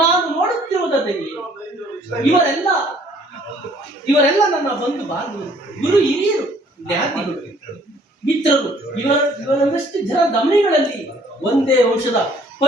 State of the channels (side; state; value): both; normal; correlation 0.59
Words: ನೋಡುತ್ತಿರುವುದಾದರೆ ಇವರೆಲ್ಲ ನನ್ನ ಬಂಧು ಬಾಂಧವರು, ಗುರು ಹಿರಿಯರು, ಜ್ಞಾತಿಗಳು, ಮಿತ್ರರು. ಇವರನ್ನಷ್ಟು ಜನ ದಮನಿಗಳಲ್ಲಿ ಒಂದೇ ವಂಶದ